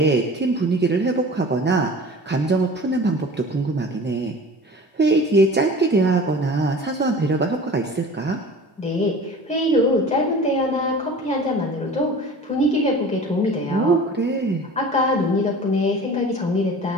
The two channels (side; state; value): both; normal; correlation 0.40